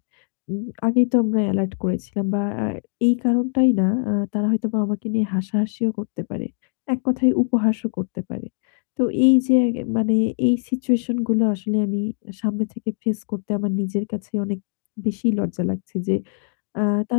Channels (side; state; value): right; silent; 64 dB below the other